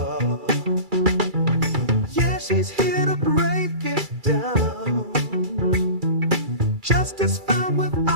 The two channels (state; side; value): late; left; 2.3 ms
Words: Yeah, she's here to break it down. Justice found